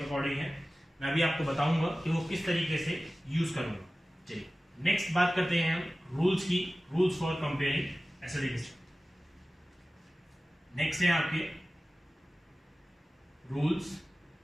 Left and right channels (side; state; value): both; normal; correlation 0.96